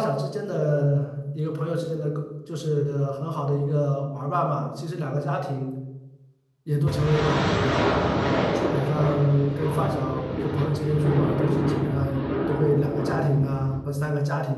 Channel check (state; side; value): identical; both; correlation 1.00